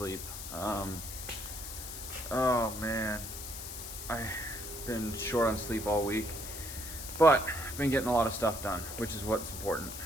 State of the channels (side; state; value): left; noise; hiss, 9 dB below the sound